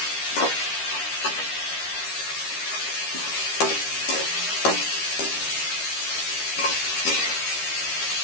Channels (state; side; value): late; right; 13 ms